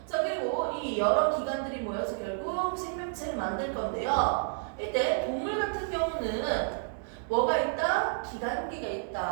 자 그리고 이 여러 기관들이 모여서 결국 생명체를 만들 건데요. 이때 동물 같은 경우는 뭐가 있다? 기관계가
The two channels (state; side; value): silent; left; digital silence